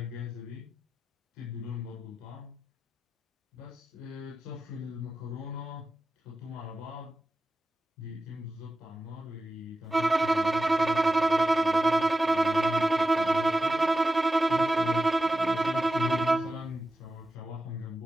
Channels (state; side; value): normal; both; correlation 0.93